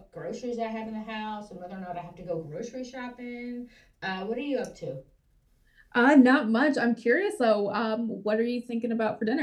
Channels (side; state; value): both; identical; correlation 1.00